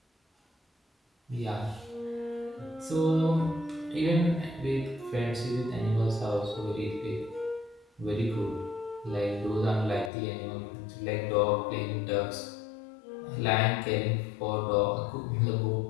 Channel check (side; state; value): right; drops out; at 10.1 s